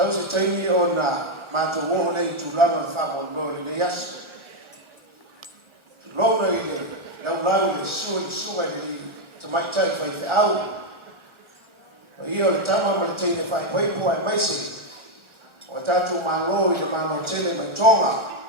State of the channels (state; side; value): late; left; 1.4 ms